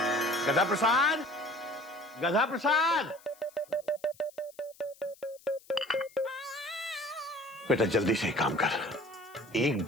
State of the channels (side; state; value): left; noise; hiss, 26 dB below the sound